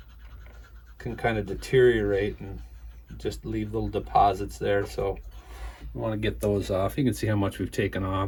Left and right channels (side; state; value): both; identical; correlation 1.00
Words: can kind of deteriorate and just leave little deposits there. So we want to get those off. You can see how much we've taken